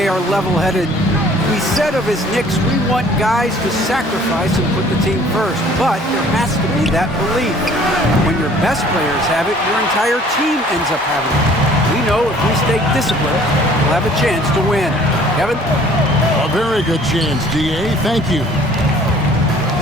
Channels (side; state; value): both; normal; correlation 0.54